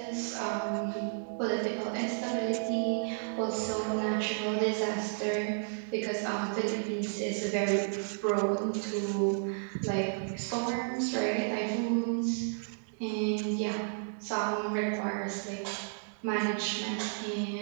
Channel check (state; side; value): silent; left; digital silence